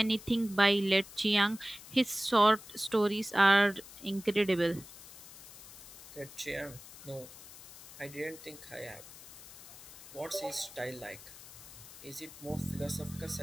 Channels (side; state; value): left; noise; hiss, 16 dB below the sound